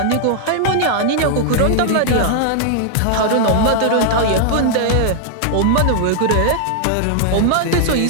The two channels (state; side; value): different; both; correlation -0.01